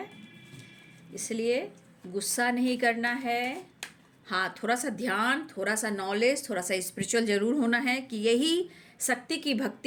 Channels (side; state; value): both; identical; correlation 1.00